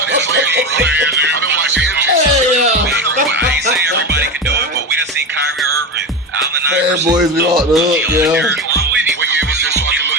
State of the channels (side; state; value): both; normal; correlation 0.20